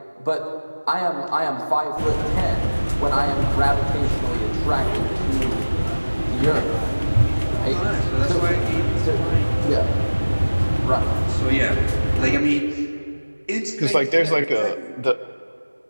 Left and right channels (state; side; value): inverted; both; correlation -1.00